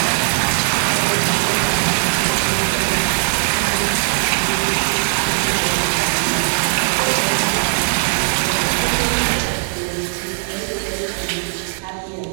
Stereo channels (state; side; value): silent; left; 65 dB below the other